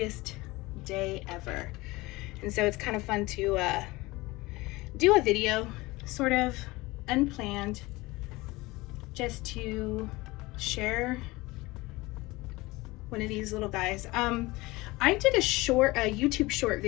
day ever. And so it's kind of fun to do a video, sort of unplanned, just to share one of these little guys. I did a YouTube short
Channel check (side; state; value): right; quieter; 21.4 dB